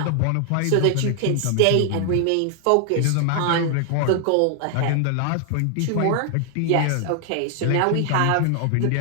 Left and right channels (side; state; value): both; different; correlation 0.00